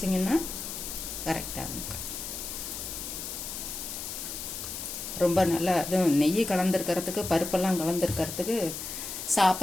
கரெக்டாகும். ரொம்ப நல்லா அதுவும் நெய் கலந்துருக்கிறதுக்கு பருப்பெல்லாம் கலந்துருக்கிறதுக்கு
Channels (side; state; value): left; noise; hiss, 7 dB below the sound